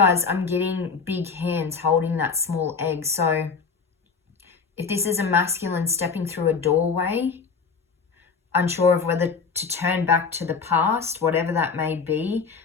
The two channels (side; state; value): right; quieter; 5.3 dB